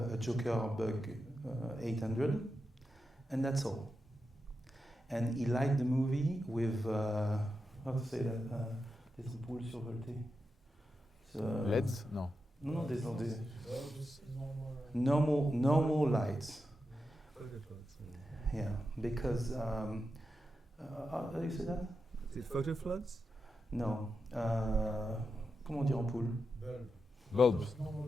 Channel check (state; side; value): normal; both; correlation 0.88